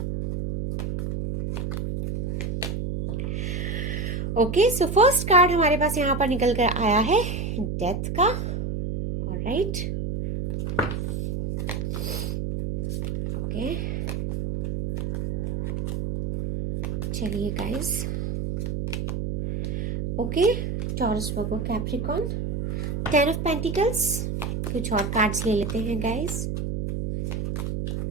ओके, सो फर्स्ट कार्ड हमारे पास यहाँ पर निकल कर आया है डेथ का। ऑलराइट, ओके, चलिए guys. Okay, taurus, Virgo, Capricorn, 10 of pentacles. कुछ और कार्ड्स ले लेते हैं guys.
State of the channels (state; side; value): noise; right; hum, 2 dB below the sound